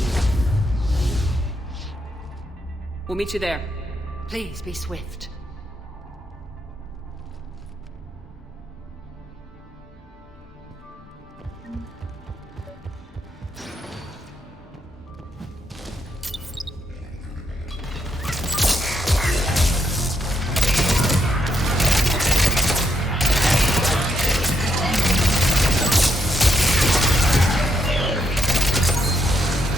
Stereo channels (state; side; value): normal; both; correlation 0.79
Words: We'll meet you there. Please be swift.